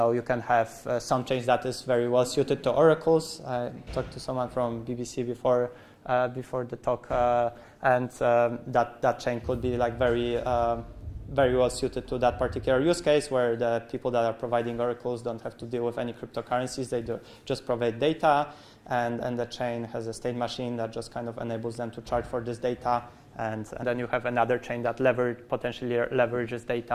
can have some chains that is very well suited to oracles. I talked to someone from BBC before the talk, and that chain could be like very well suited to that particular use case, where the people that are providing oracles don't have to deal with any cryptocurrencies. They just provide data. And the chain has a state machine that just kind of enables them to charge for this data. And then you have another chain that potentially leverages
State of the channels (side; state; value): both; identical; correlation 1.00